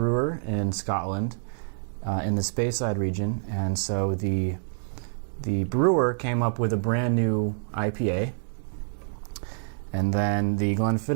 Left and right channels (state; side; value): silent; left; digital silence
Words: in Scotland, in the Speyside region, and so the brewer came up with a brand new IPA, and then the